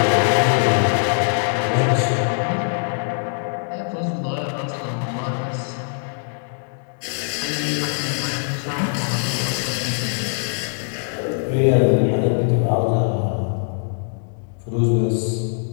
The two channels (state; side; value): silent; right; digital silence